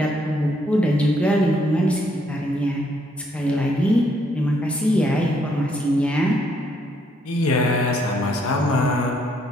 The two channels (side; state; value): both; normal; correlation 0.72